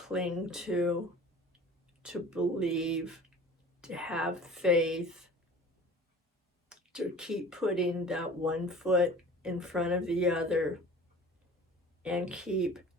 to believe, to have faith, to keep putting that one foot in front of the other, and keep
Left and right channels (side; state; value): both; normal; correlation 0.43